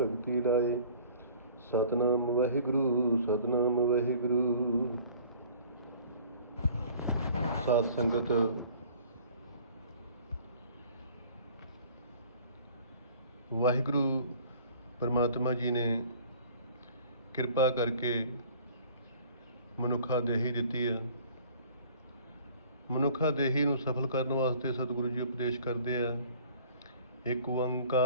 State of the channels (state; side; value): inverted; both; correlation -0.51